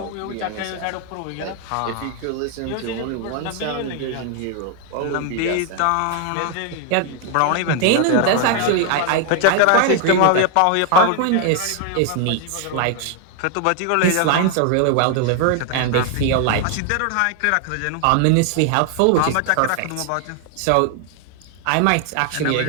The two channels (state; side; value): different; both; correlation 0.00